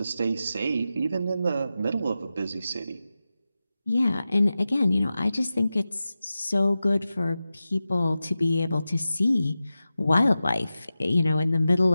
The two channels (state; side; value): inverted; both; correlation -0.93